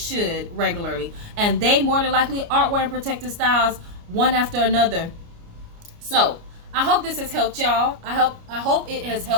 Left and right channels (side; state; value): left; late; 29 ms